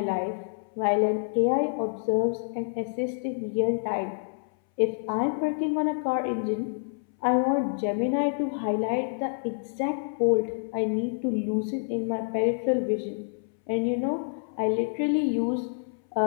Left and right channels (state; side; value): silent; right; 60 dB below the other